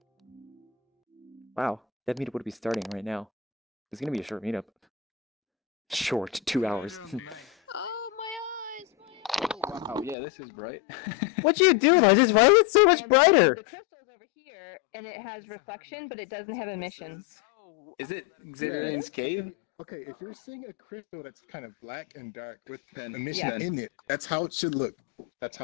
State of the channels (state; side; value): drops out; right; at 10.2 s